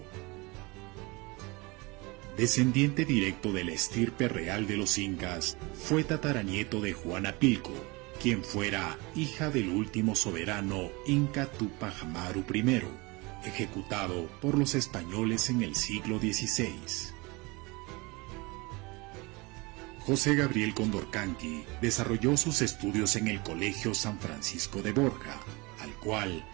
Descendiente directo de la estirpe real de los incas, fue tataranieto de Juana Pilco, quien fuera hija del último soberano inca Túpac Amaru I, ejecutado por los españoles en el siglo XVI. José Gabriel Condorcanqui desarrolló sus estudios en el Colegio San Francisco de Borja, al cual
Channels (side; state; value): left; quieter; 25.5 dB